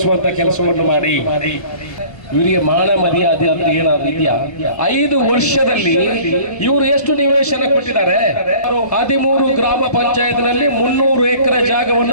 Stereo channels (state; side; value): late; right; 1.3 ms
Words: ಕೆಲಸವನ್ನು ಮಾಡಿ ಇವರಿಗೆ ಮಾನ ಮರ್ಯಾದೆ ಅಂದ್ರೆ ಏನಾದ್ರು ಇದೆಯಾ? 5 ವರ್ಷದಲ್ಲಿ ಇವರು ಎಷ್ಟು ನಿವೇಶನ ಕೊಟ್ಟಿದ್ದಾರೆ? 13 ಗ್ರಾಮ ಪಂಚಾಯತ್ನಲ್ಲಿ 300 ಎಕರೆ